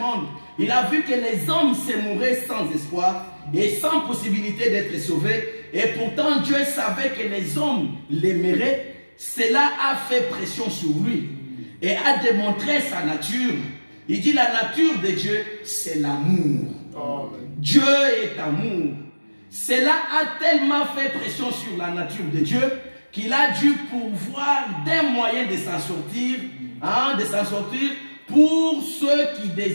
il a vu que les hommes se mouraient sans espoir et sans possibilité d'être sauvés. Et pourtant, Dieu savait que les hommes l'aimeraient. Cela a fait pression sur lui et a démontré sa nature. Il dit la nature de Dieu, c'est l'amour. Dieu est amour. Cela a tellement fait pression sur la nature de Dieu qu'il a dû pourvoir des moyens de s'en sortir, pour ceux qui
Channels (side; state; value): both; inverted; correlation -1.00